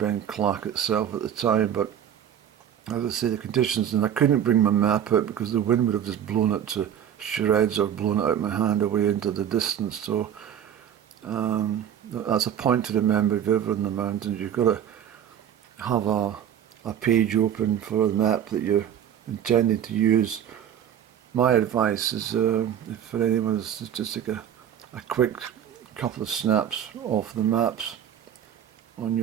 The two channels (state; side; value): quieter; left; 9.6 dB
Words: Clach itself at the time, but as I say, the conditions, and I couldn't bring my map out because the wind would have just blown it to shreds or blown it out of my hand away into the distance. So that's a point to remember if you're ever in the mountains. You've got to have a page open for the map that you're intending to use. My advice is, if for anyone, is to just take a quick couple of snaps off the maps on